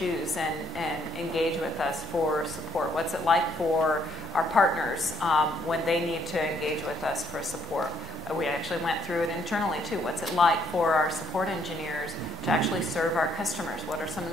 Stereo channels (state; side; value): normal; both; correlation 0.69